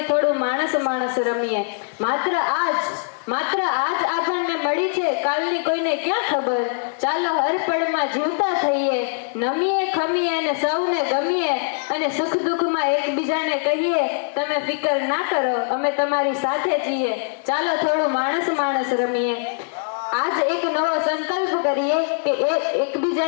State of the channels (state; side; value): silent; right; digital silence